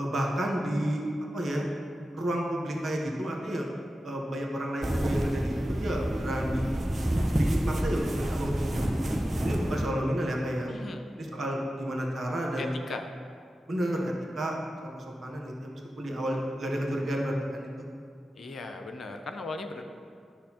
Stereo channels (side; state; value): both; normal; correlation 0.93